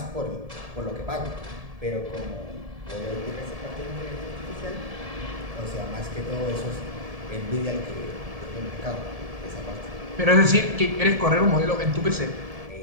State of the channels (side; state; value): left; late; 1.7 ms